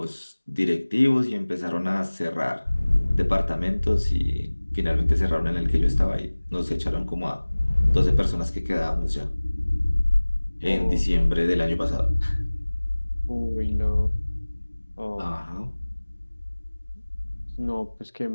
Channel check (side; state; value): both; inverted; correlation -1.00